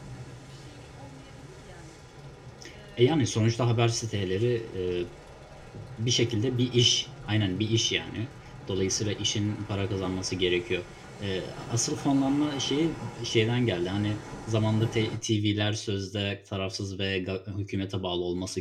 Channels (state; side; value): identical; both; correlation 1.00